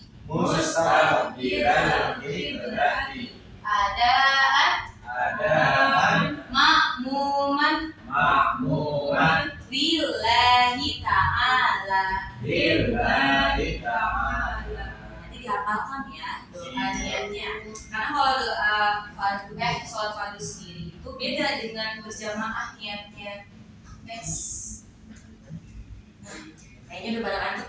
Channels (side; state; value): both; identical; correlation 1.00